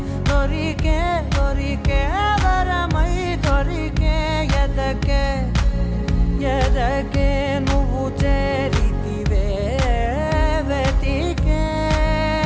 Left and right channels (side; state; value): both; identical; correlation 1.00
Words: దొరికే దొరికే వరమై దొరికే ఎదకే ఎదకే నువ్వు చేరితివే వెతికే